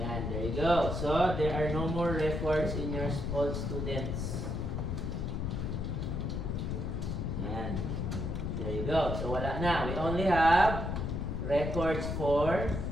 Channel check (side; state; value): left; noise; rumble, 2 dB below the sound